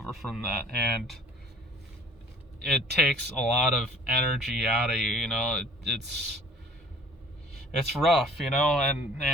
from that, and it takes a lot of energy out of you. It's rough, and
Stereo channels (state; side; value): normal; both; correlation 0.51